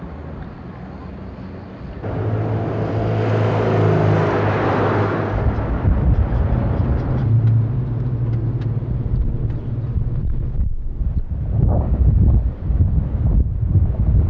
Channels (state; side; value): identical; both; correlation 1.00